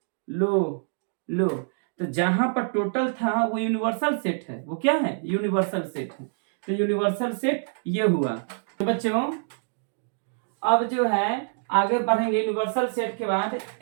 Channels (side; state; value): left; silent; digital silence